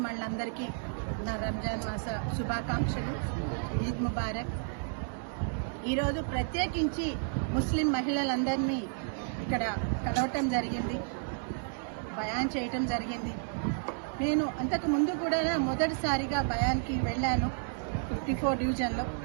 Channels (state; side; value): silent; left; digital silence